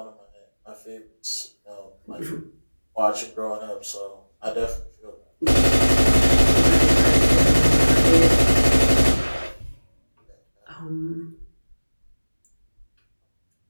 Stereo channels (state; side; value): inverted; both; correlation -1.00